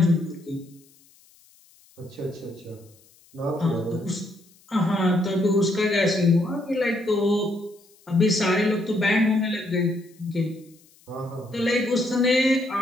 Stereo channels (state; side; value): noise; left; hiss, 30 dB below the sound